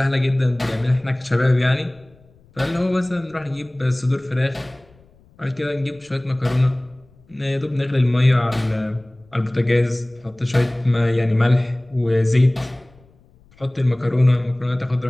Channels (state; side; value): noise; left; rumble, 29 dB below the sound